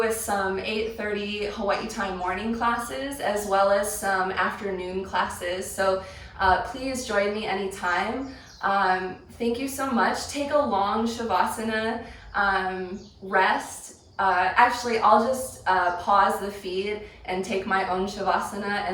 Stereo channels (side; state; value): both; identical; correlation 1.00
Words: some 8:30 Hawaii time morning classes as well as some afternoon classes. So please join me anytime. Thank you so much. Take a long Shavasana, rest. Actually, I'll just pause the feed and take my own Shavasana